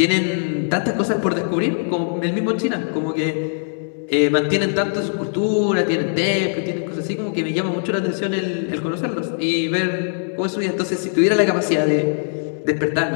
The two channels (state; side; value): silent; right; 65 dB below the other